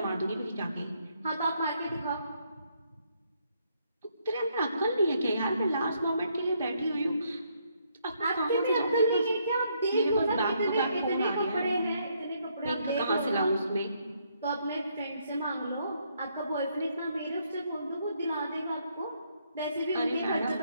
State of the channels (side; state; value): both; inverted; correlation -0.73